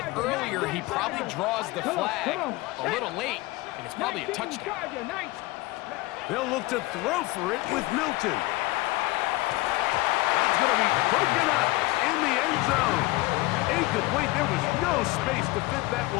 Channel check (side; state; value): right; quieter; 20.3 dB